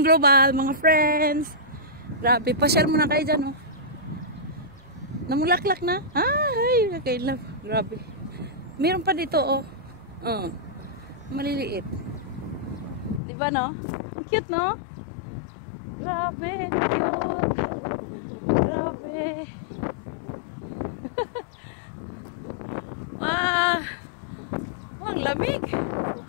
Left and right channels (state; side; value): drops out; right; at 13.2 s